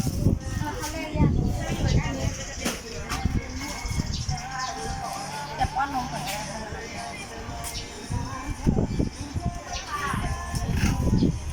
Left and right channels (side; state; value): both; identical; correlation 1.00